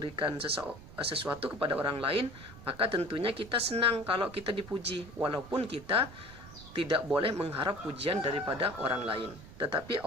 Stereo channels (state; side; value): noise; right; rumble, 16 dB below the sound